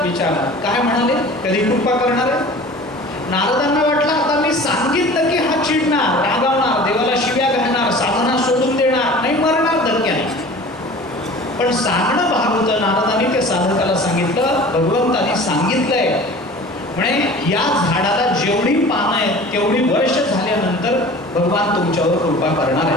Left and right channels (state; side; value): normal; both; correlation 0.42